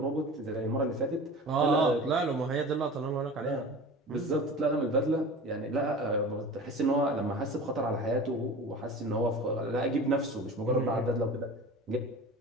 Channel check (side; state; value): both; normal; correlation 0.36